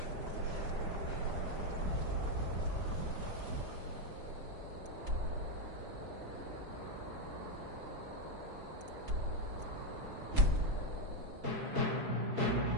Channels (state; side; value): late; left; 5.0 ms